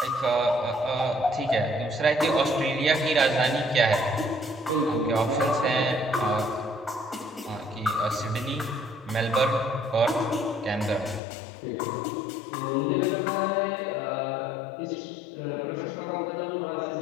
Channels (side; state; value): right; drops out; at 11.2 s